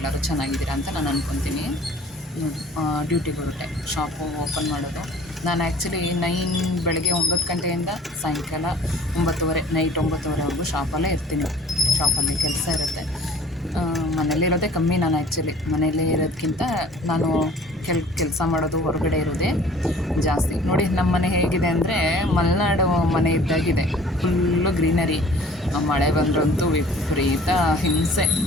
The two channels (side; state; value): both; normal; correlation 0.50